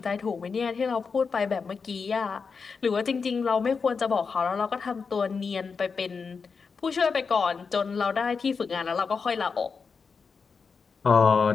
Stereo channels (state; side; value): quieter; right; 5.3 dB